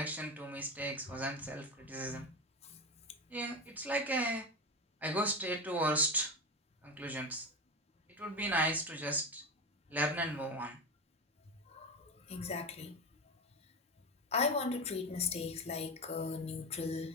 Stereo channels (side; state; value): both; normal; correlation 0.20